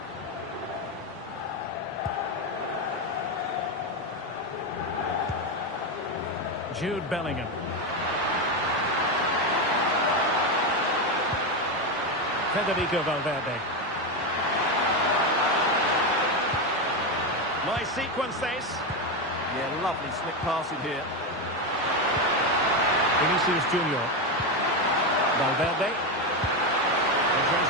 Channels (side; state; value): both; normal; correlation 0.11